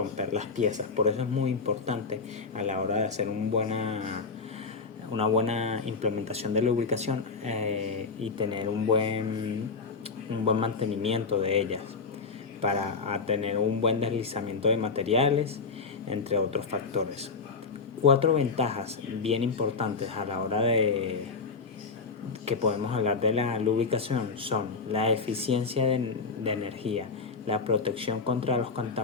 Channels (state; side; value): quieter; right; 4.6 dB